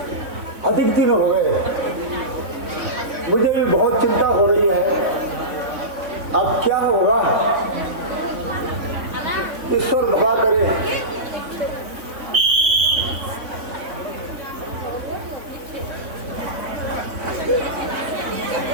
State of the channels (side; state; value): left; late; 3.5 ms